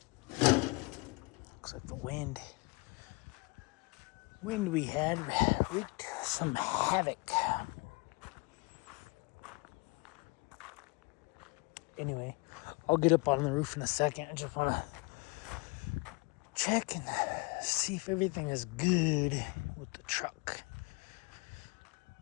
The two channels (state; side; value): quieter; right; 28.0 dB